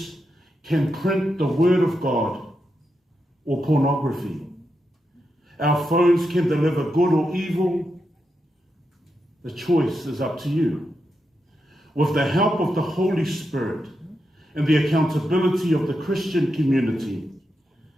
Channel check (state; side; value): normal; both; correlation 0.85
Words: can print the word of God or pornography, our phones can deliver good or evil. The choice is up to you. With the help of the Holy Spirit and the accountability of the Christian community,